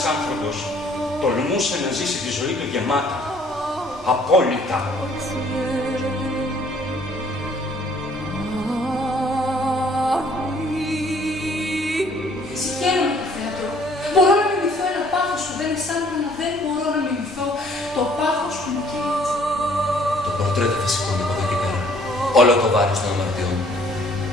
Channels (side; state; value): both; normal; correlation 0.60